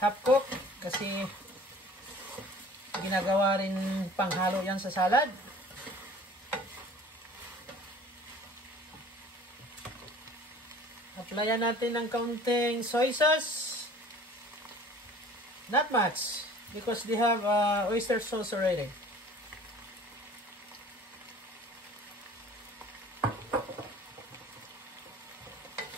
cook. Kasi ginagawa rin panghalo yan sa salad. Applyan natin ng kaunting soy sauce. Not much. Because they have oyster sauce already.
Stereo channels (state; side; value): normal; both; correlation 0.48